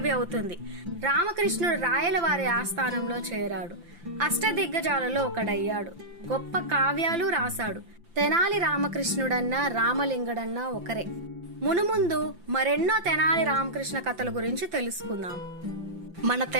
అవుతుంది. రామకృష్ణుడు రాయలవారి ఆస్థానంలో చేరాడు. అష్టదిగ్గజాలలో ఒకడయ్యాడు. గొప్ప కావ్యాలు రాశాడు. తెనాలి రామకృష్ణుడన్నా రామలింగడన్నా ఒకరే. మునుముందు మరెన్నో తెనాలి రామకృష్ణ కథల గురించి తెలుసుకుందాం. మన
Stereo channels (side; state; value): left; late; 5.8 ms